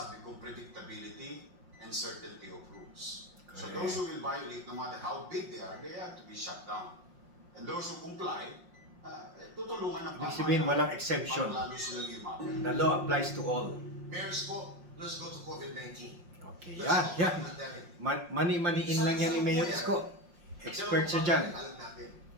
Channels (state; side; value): late; left; 5.6 ms